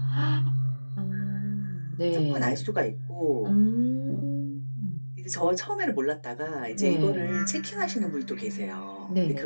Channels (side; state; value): both; inverted; correlation -1.00